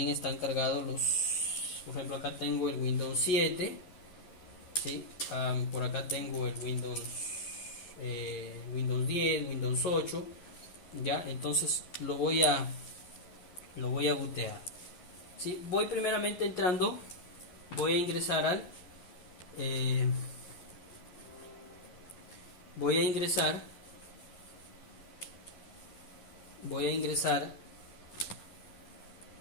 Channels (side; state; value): right; late; 11 ms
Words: están cargados los... Por ejemplo, acá tengo el Windows 7, ¿sí? Por acá tengo el Windows Windows 10, Windows 8, ya. Entonces lo voy a bootear. ¿Sí? Voy primeramente entrando, voy a ingresar al voy a ingresar